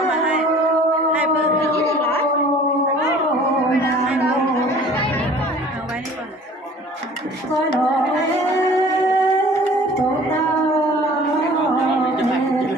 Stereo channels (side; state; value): both; normal; correlation 0.48